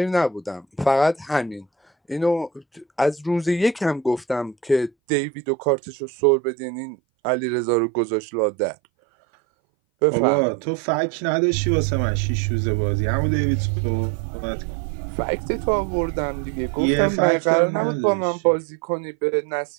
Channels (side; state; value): left; drops out; at 4.9 s